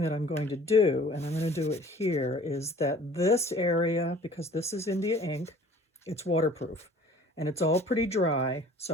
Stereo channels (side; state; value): both; normal; correlation 0.50